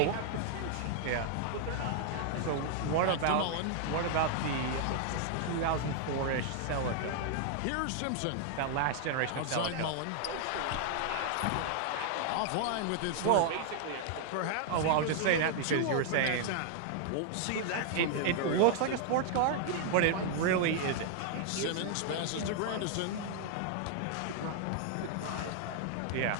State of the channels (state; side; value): different; both; correlation 0.00